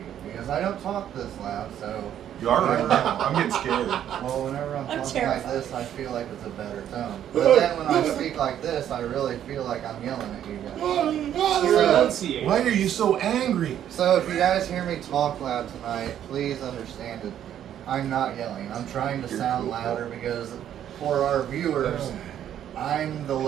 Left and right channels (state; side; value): quieter; left; 10.5 dB